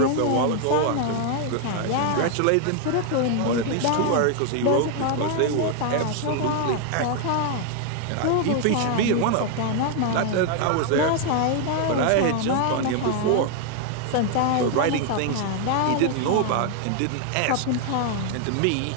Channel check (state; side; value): different; both; correlation 0.00